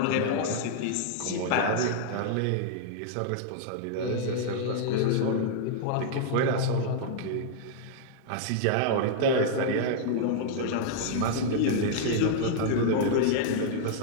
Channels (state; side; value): different; both; correlation -0.01